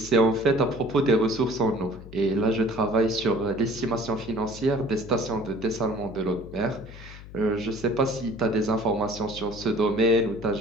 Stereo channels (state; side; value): noise; left; hum, 16 dB below the sound